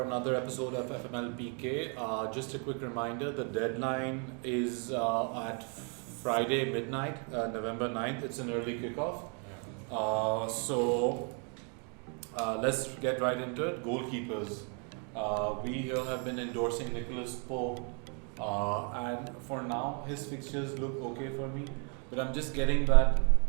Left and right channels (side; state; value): left; quieter; 38.3 dB